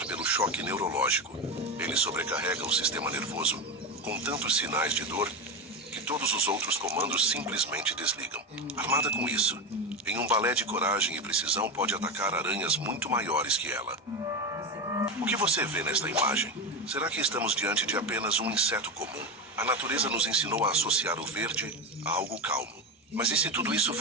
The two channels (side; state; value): both; normal; correlation 0.17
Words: pelo choque neurológico. Ele sobrecarrega o sistema nervoso com tantos sinais de dor que todos os outros comandos simplesmente desligam. Armada com isso, em um balé de coragem e precisão, pode atacar aranhas muito maiores que ela. O que você vê nesta imagem? Será que estamos diante de apenas um inseto comum? A natureza nos ensinou a associar o verde a algo calmo. Mas e se tudo isso